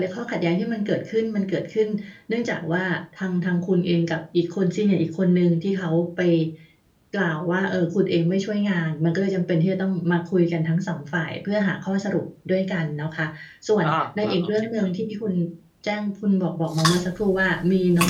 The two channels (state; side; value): identical; both; correlation 1.00